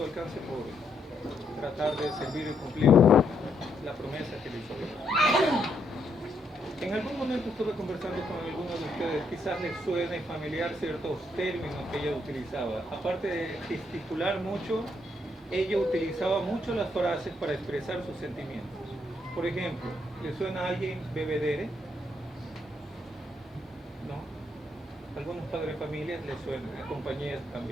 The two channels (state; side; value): normal; both; correlation 0.75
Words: alcance por tratar de servir y cumplir la promesa que le hizo Dios. En algún momento estuve conversando con algunos de ustedes, quizás les suene familiar ciertos términos que ella utilizaba. Aparte de gesticular mucho, ella utilizaba mucho las frases para expresar sus sentimientos. Por ejemplo, ¿le suena a alguien bebedere? ¿No? Algunos padres de familia les suenan, a compañías